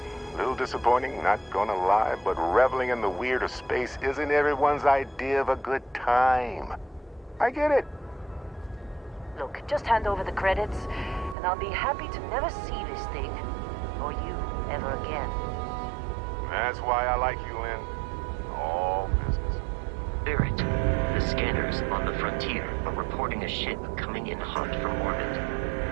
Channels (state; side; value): drops out; left; at 11.4 s